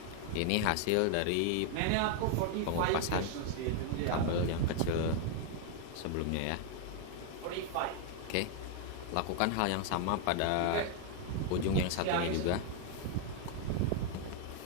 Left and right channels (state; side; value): different; both; correlation 0.00